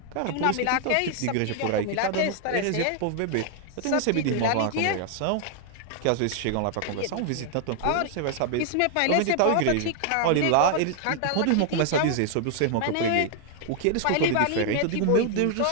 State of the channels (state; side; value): different; both; correlation 0.00